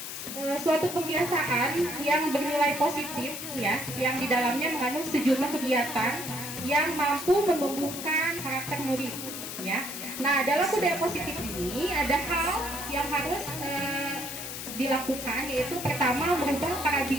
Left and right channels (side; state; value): left; noise; hiss, 7 dB below the sound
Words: suatu kebiasaan yang bernilai positif ya, yang di dalamnya mengandung sejumlah kegiatan yang mampu menumbuhkan karakter murid ya. Nah, dalam budaya positif ini ada hal yang harus dilakukan, yaitu pertama merubah